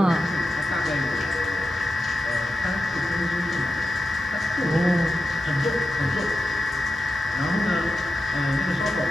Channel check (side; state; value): both; normal; correlation 0.91